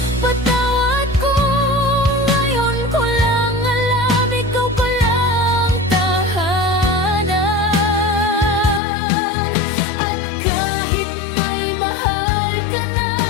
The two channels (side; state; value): right; drops out; at 8.8 s